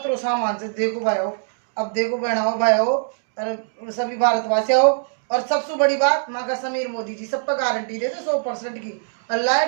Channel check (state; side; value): silent; left; digital silence